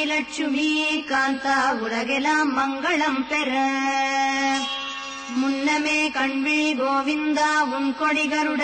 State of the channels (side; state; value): both; identical; correlation 1.00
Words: லட்சுமி காந்தா உலகெல்லாம் மங்களம் பெற. முன்னமே கண்விழி கோவிந்தா உன் கொடி